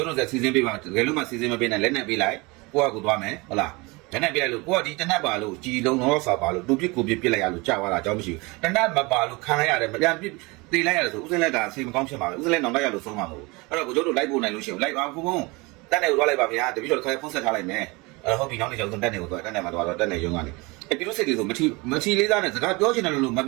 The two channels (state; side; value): quieter; left; 25.4 dB